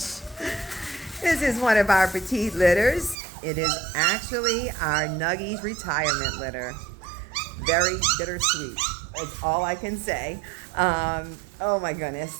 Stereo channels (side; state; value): left; drops out; at 3.2 s